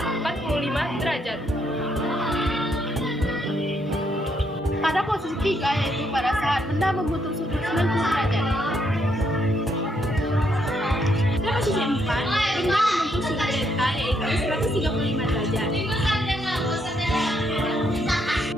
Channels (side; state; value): both; normal; correlation 0.75